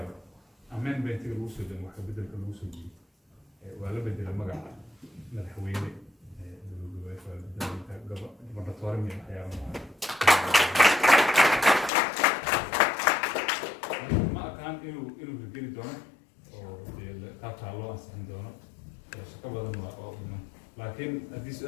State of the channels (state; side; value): drops out; right; at 11.9 s